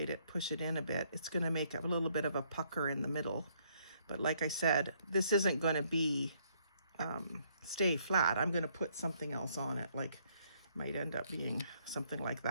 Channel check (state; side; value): inverted; both; correlation -0.69